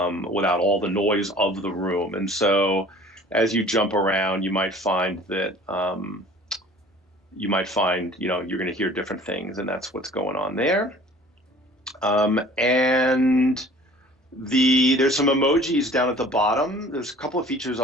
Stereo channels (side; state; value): both; normal; correlation 0.48